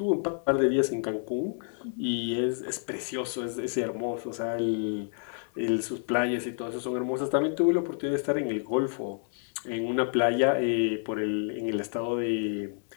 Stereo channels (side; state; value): right; silent; 59 dB below the other